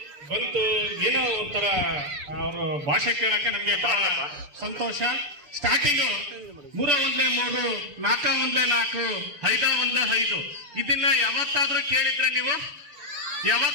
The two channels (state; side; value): late; left; 6.9 ms